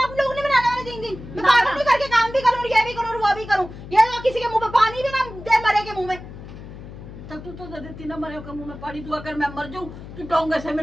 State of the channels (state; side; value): noise; left; hum, 14 dB below the sound